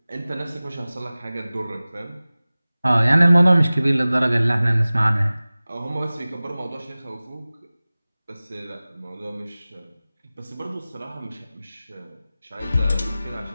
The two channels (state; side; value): inverted; both; correlation -0.98